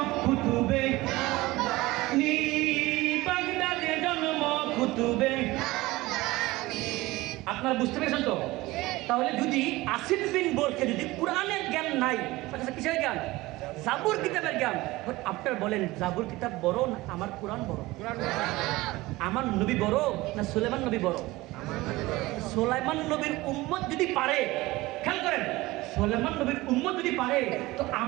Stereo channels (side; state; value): left; quieter; 19.7 dB